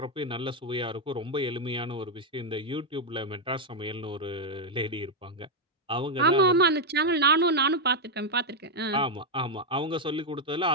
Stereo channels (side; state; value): both; normal; correlation 0.01